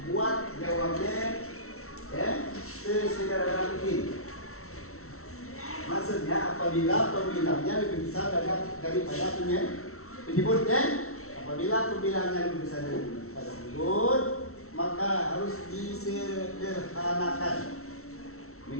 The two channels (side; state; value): right; late; 0.63 ms